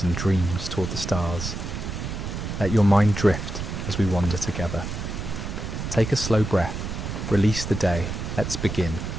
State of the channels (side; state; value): right; noise; rumble, 5 dB below the sound